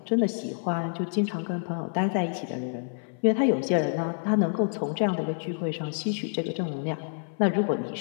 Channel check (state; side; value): silent; right; 57 dB below the other